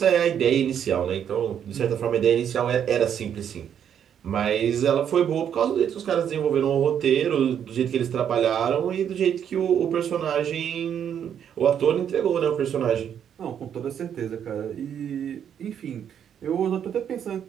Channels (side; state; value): left; quieter; 8.8 dB